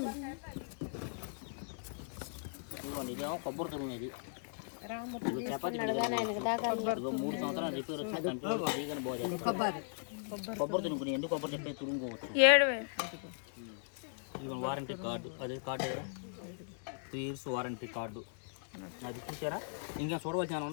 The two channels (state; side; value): silent; right; digital silence